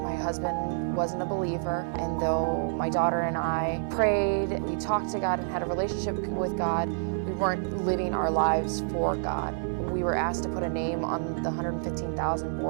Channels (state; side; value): silent; left; digital silence